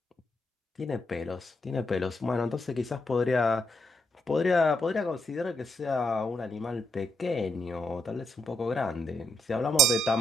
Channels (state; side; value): normal; both; correlation 0.77